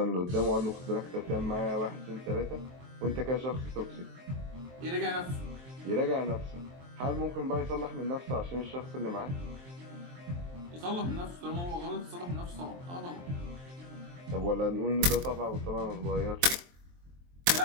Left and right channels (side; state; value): left; late; 23 ms